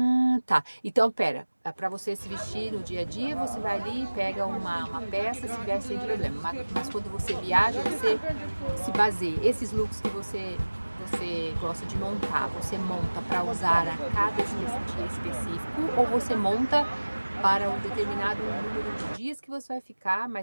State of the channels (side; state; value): both; inverted; correlation -1.00